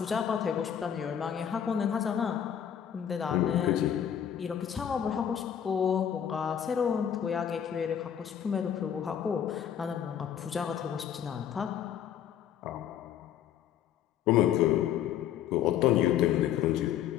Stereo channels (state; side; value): quieter; right; 9.4 dB